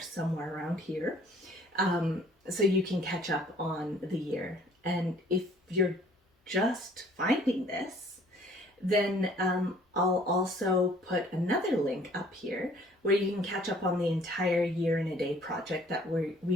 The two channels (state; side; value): normal; both; correlation 0.57